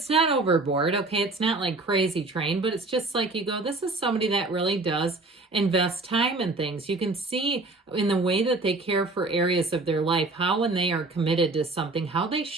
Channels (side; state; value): left; quieter; 3.3 dB